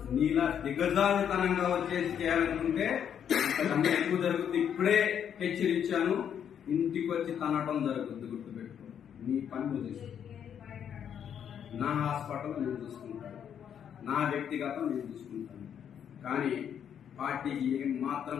నీలా దిగజారుతనంగా వచ్చేసి చేయాలనుకుంటే అంతకన్నా ఎక్కువ జరుగుతుంది. ఇప్పుడే హెచ్చరించాను, ఇంటికి వచ్చి తనటం జరుగుతుంది, గుర్తుపెట్టుకో. నీ పని నువ్వు చేసుకో. నా హాస్పిటల్ నేను చూసుకుంటాను, నా వ్యక్తిగతం నేను చూసుకుంటాను. కానీ పార్టీకి ఏం మాత్రం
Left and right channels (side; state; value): right; quieter; 8.6 dB